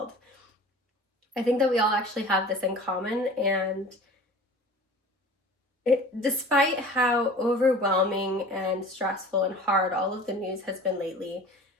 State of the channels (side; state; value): both; normal; correlation 0.42